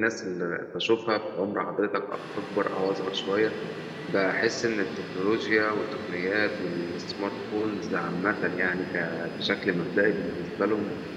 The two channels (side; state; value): both; identical; correlation 1.00